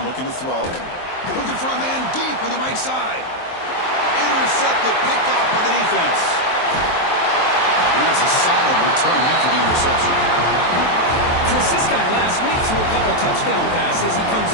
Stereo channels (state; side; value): late; right; 23 ms